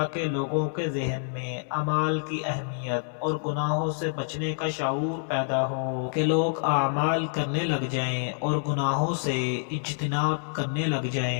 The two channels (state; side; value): silent; right; 60 dB below the other